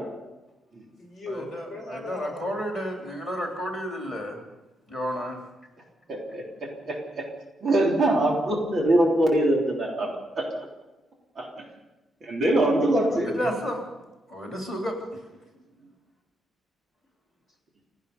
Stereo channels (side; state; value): both; normal; correlation 0.80